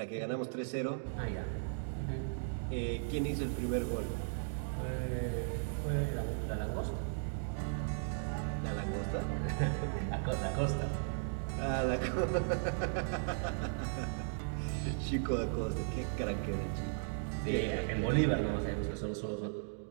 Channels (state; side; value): silent; left; digital silence